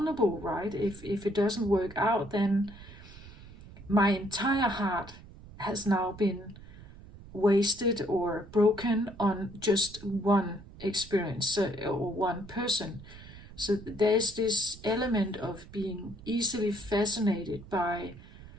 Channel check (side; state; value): right; noise; rumble, 18 dB below the sound